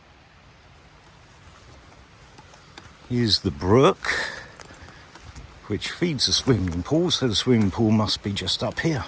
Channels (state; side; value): identical; both; correlation 1.00